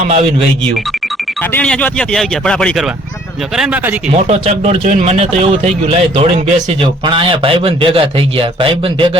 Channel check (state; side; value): normal; both; correlation 0.59